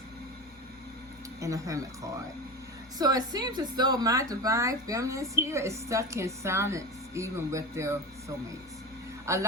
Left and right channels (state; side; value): normal; both; correlation 0.26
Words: and a Hermit card. So it seems as though my divine feminines here is stuck in silence, even with their soulmates. A